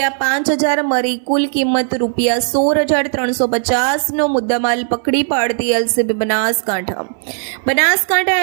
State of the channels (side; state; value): left; silent; digital silence